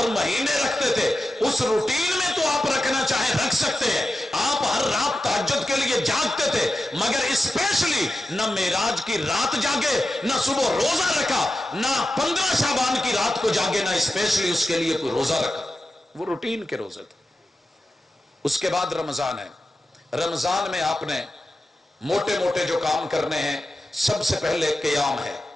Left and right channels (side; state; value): both; normal; correlation 0.91